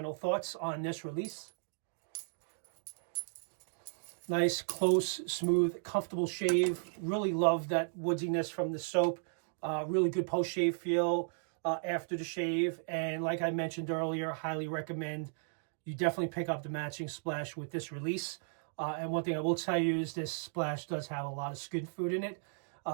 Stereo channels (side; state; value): left; silent; digital silence